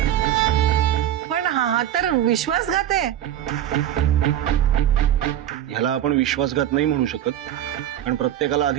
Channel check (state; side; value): quieter; left; 11.5 dB